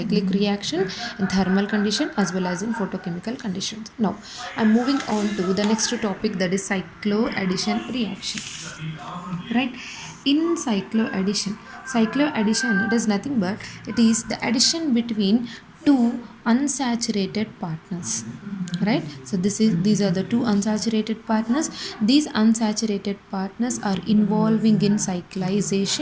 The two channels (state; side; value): identical; both; correlation 1.00